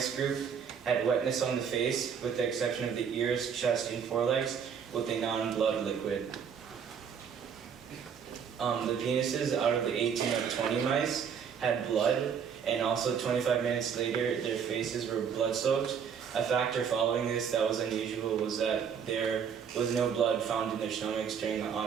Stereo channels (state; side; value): quieter; left; 7.3 dB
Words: group had wetness on the face, with the exception of the ears, chest, and forelegs, with a non-blood liquid. The penises out of the 18 of 20 mice had blood, and also 25 minutes later, their faces were blood-soaked. A factor following this that was unusual was that there was no blood found in their stomachs during the